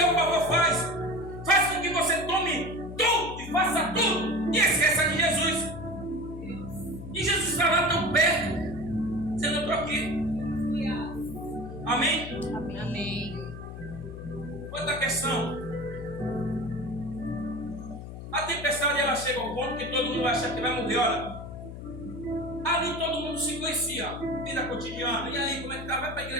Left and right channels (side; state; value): left; noise; hum, 10 dB below the sound